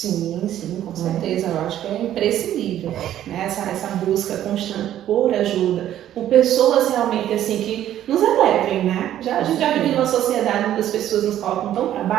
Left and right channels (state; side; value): quieter; left; 11.9 dB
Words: com certeza, eu acho que é imprescindível, né? Essa busca constante por ajuda, por pessoas realmente assim que nos elevem, né? A gente já vive numa sociedade onde as pessoas nos colocam tão para